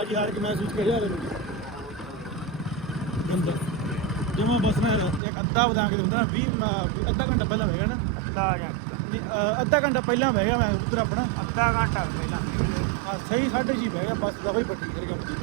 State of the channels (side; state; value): left; drops out; at 5.2 s